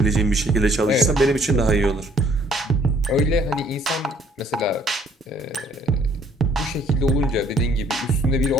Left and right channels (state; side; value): normal; both; correlation 0.61